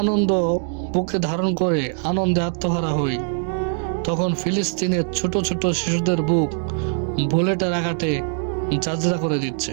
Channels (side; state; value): left; silent; 59 dB below the other